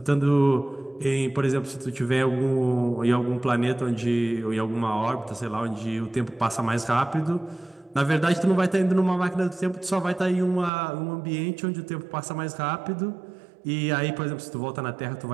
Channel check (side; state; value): left; drops out; at 10.7 s